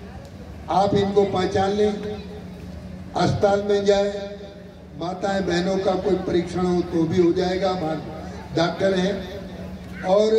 आप इनको पहचान लें, अस्पताल में जाए, माताएं बहनों का कोई परीक्षण हो तो भी हो जाएगा, हमारे डॉक्टर हैं, और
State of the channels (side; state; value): both; identical; correlation 1.00